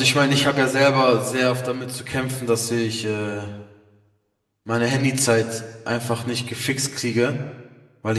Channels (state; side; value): identical; both; correlation 1.00